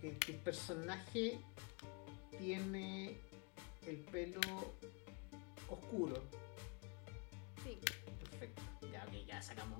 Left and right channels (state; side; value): quieter; right; 32.9 dB